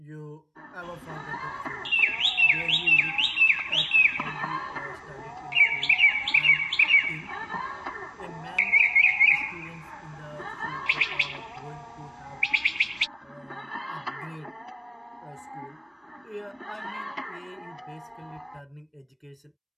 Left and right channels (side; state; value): both; identical; correlation 1.00